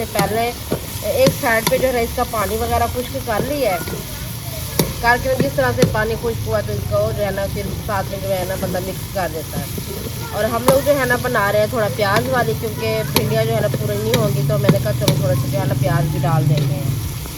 पहले एक साइड पे जो है इसका पानी वगैरह खुश्क कर लिया है। करके जिस तरह से पानी खुश्क हुआ तो इसको जो है ना फिर साथ में जो है ना बंदा मिक्स कर देता है। और हम लोग जो है ना बना रहे हैं थोड़ा प्याज वाली, क्योंकि भिंडियाँ जो है ना पूरी नहीं होंगी, तो मैंने कहा चलो थोड़ा सा जो है ना प्याज भी डाल देंगे।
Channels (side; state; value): both; identical; correlation 1.00